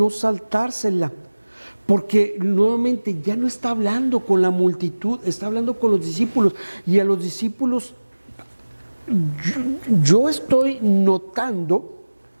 saltársela, porque nuevamente ya no está hablando con la multitud, está hablando con los discípulos. Y a los discípulos, yo estoy notando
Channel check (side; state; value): both; inverted; correlation -1.00